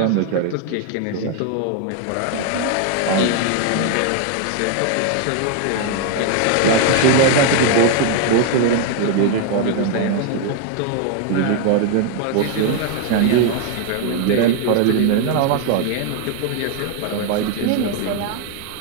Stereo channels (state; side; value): different; both; correlation 0.01